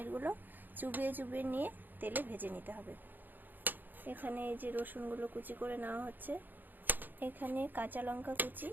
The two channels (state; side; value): late; left; 0.089 ms